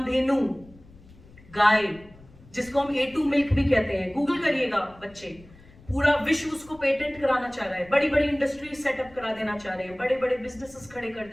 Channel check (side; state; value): left; noise; rumble, 24 dB below the sound